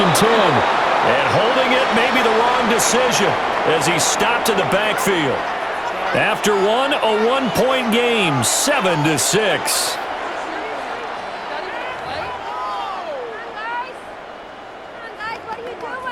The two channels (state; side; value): identical; both; correlation 1.00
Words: and 10. And holding it may be the wrong decision as he stopped in the backfield. After one, a one-point game, 7-6.